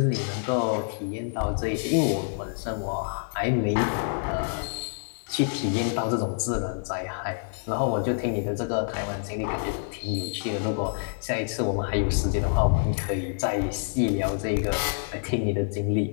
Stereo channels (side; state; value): right; silent; 60 dB below the other